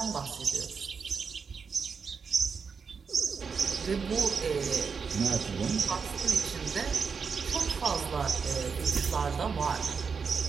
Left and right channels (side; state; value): left; quieter; 5.7 dB